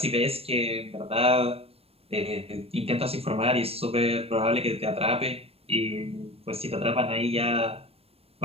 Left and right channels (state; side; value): late; left; 0.28 ms